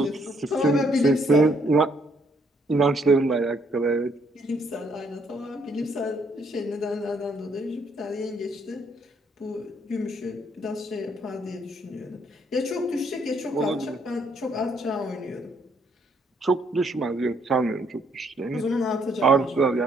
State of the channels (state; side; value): normal; both; correlation 0.69